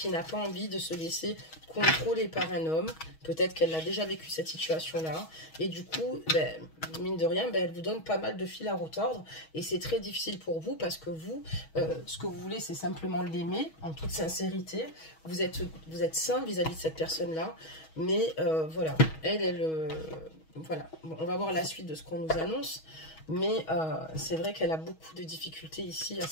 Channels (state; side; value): late; right; 6.3 ms